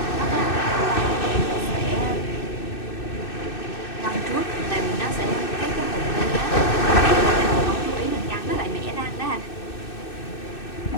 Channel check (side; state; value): right; late; 2.6 ms